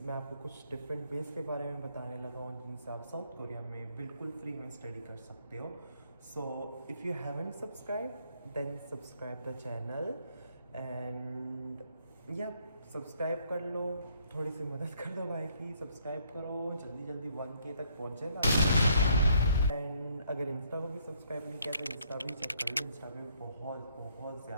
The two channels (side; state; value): both; inverted; correlation -0.68